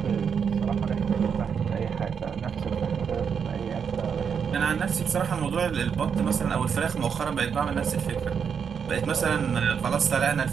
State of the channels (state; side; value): quieter; left; 6.9 dB